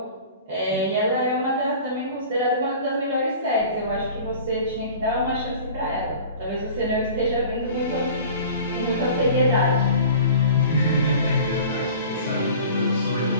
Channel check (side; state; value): both; inverted; correlation -0.43